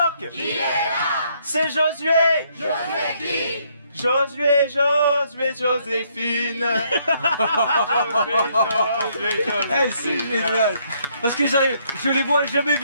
Qui est là? C'est Josué. Josué qui? Josué, Joséphine. Josué, Eh, c'est génial. Parce que je les vois jamais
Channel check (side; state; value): both; inverted; correlation -0.70